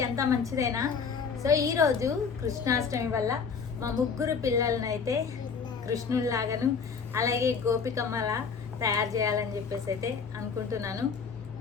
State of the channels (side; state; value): right; quieter; 5.7 dB